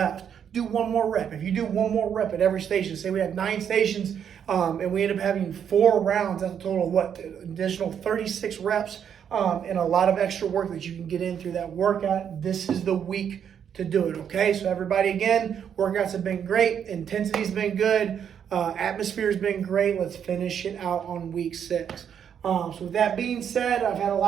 Do one more rep. If you do one more rep at every station, say we have 9 stations and we end up having 4 rounds, that's a total of what? Additional 36 reps and a lot of extra work that you can get in through that workout. This is the week to do it, okay? So everybody, again, workouts have been great. Intensity's been good. Atmosphere's been great. Let's finish it out on week 6. So with that being said, I've had a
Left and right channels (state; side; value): quieter; left; 8.3 dB